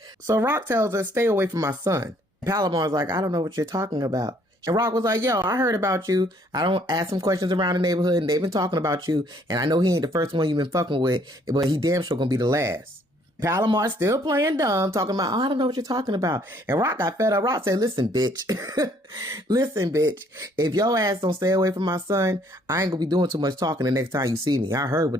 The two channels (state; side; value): normal; both; correlation 0.63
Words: So Rock tells her, stay away from my son. Palomar's like, I don't know what you're talking about. And Rock was like, yo, I heard about you. I don't ask some questions around the neighborhood, and they've been talking about you. And I know he ain't the first one you've been fucking with, but he damn sure gonna be the last. Palomar's still playing dumb, talking about, oh, I don't know what you're talking about. And Rock got fed up. Rock said, listen, bitch. Listen, bitch. If your ass don't stay away from my son, I ain't gonna be doing too much talking the next time you see me. I heard